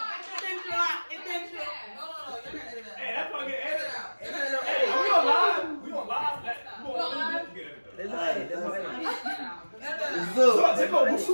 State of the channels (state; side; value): inverted; both; correlation -1.00